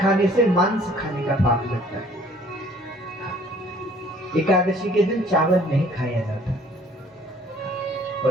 से मांस खाने का पाप लगता है। एकादशी के दिन चावल नहीं खाया जाता।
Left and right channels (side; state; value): both; normal; correlation 0.57